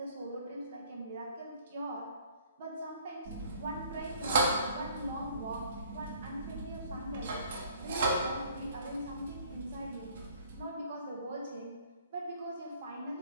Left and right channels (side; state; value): both; inverted; correlation -0.58